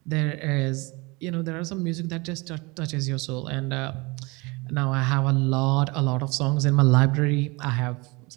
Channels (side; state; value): left; quieter; 25.7 dB